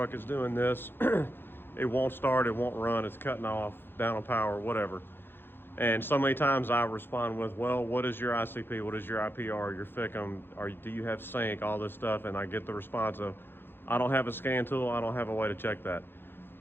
is doing this. It won't start, it won't run, it's cutting off, down on power, whatever. And so many times I respond with, well, what is your ICP? What is your IPR, your FICM? Do you have sync, all this stuff? And I get the response of, I don't have a scan tool, I don't have a way to check that.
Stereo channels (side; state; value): right; late; 0.10 ms